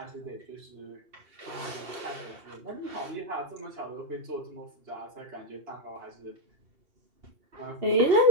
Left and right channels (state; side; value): late; left; 2.7 ms